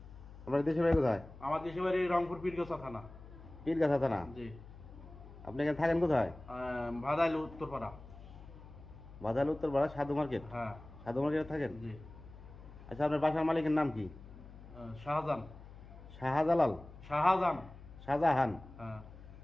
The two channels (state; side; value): noise; left; hum, 17 dB below the sound